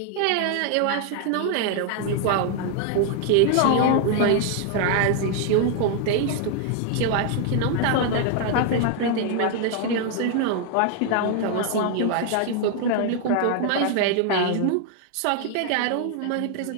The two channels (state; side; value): different; both; correlation 0.00